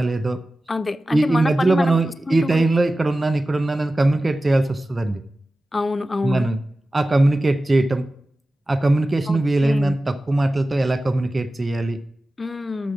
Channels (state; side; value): normal; both; correlation 0.95